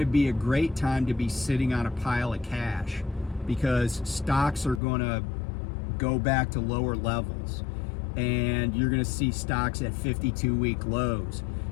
be a great time to be sitting on a pile of cash because stocks are going to go back to lower levels, and you're going to see stocks at 52-week lows.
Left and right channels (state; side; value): drops out; right; at 4.8 s